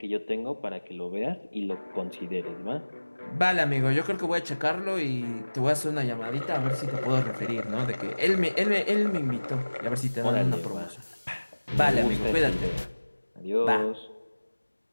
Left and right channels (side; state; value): both; inverted; correlation -1.00